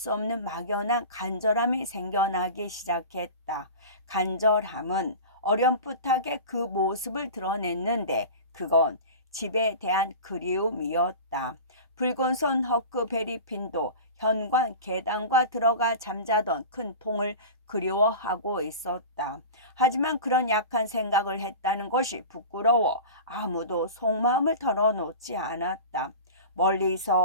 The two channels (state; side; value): inverted; both; correlation -0.33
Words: 없는 막연한 간절함이 생겨나기 시작했다. 간절함은 어렴풋하게 그 모습을 드러냈는데 그건 집에 대한 그리움이었다. 붉은 손 허크베리핀도 현관 계단과 들어가 잠자던 큰 통을 그리워하고 있었다. 하지만 그런 약한 생각을 했다는 것이 부끄러워 아무도 속마음을 털어놓지 않았다.